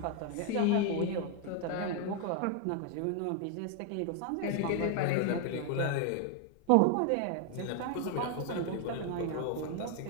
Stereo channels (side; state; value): both; different; correlation 0.01